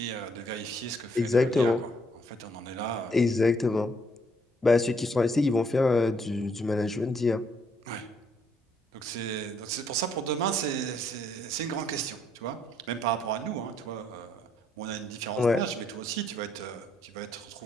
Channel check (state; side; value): normal; both; correlation 0.70